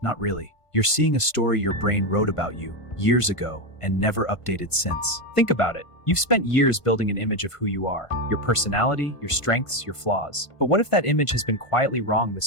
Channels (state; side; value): late; right; 1.5 ms